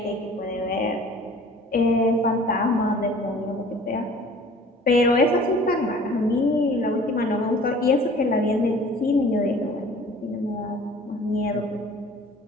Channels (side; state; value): both; normal; correlation 0.48